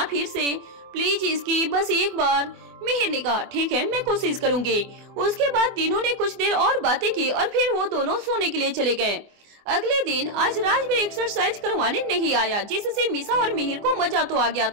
फिर से प्लीज इसकी, बस एक बार। मिहिर ने कहा, ठीक है मैं कोशिश करूंगी। उसके बाद तीनों ने कुछ देर और बातें की और फिर वो दोनों सोने के लिए चले गए। अगले दिन आज राजवीर एक्सरसाइज करवाने नहीं आया, जिससे मीसा और मिहिर को मजा तो आ गया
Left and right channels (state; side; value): late; left; 24 ms